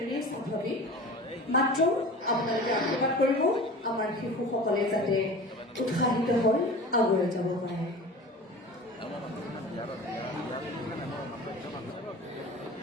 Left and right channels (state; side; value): normal; both; correlation 0.37